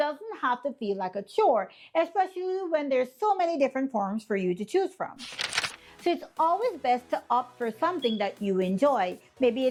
have to feel like a chore, especially when there's so many different forms for you to choose from. So it's always best to opt for something that you enjoy. Maybe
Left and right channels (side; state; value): both; identical; correlation 1.00